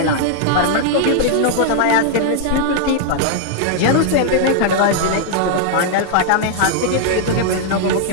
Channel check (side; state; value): both; different; correlation -0.01